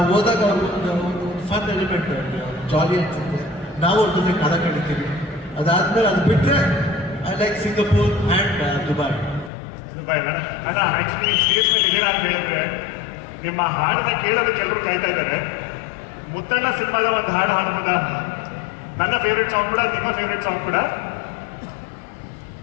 ಹೋದಾಗ ಅವರು ಒಂದು ಫನ್ ಎಲಿಮೆಂಟ್, ಜಾಲಿ ಅನ್ಸುತ್ತೆ. ನಾವು ಅವ್ರ ಜೊತೆ ಕಾಲ ಕಳಿತೀವಿ. ಅದಾದ್ಮೇಲೆ ಅದು ಬಿಟ್ಟರೆ I like Singapore and Dubai. ಅಲ್ಲ, ಆಕ್ಚುಲಿ ಸ್ಟೇಜ್ ಮೇಲೆ ಇದೀರಾ ಅಂತ ಹೇಳಿದ್ರೆ ನಿಮ್ಮ ಹಾಡನ್ನ ಕೇಳೋದಕ್ಕೆ ಎಲ್ಲರೂ ಕಾಯ್ತಾ ಇದ್ದಾರೆ. ಮುತ್ತಣ್ಣ ಸಿನಿಮಾದ ಒಂದು ಹಾಡು ಹಾಡ್ಬೋದಾ? ನನ್ನ ಫೇವ್ರೆಟ್ ಸಾಂಗ್ ಕೂಡ, ನಿಮ್ಮ ಫೇವ್ರೆಟ್ ಸಾಂಗ್ ಕೂಡ.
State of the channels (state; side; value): drops out; right; at 9.5 s